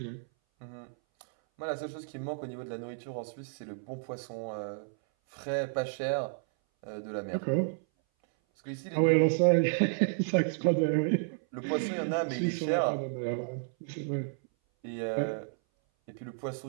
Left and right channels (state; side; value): silent; left; 57 dB below the other